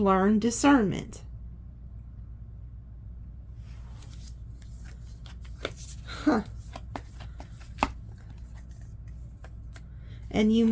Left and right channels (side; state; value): both; identical; correlation 1.00